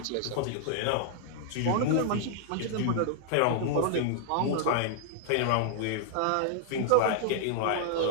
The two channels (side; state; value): both; different; correlation 0.00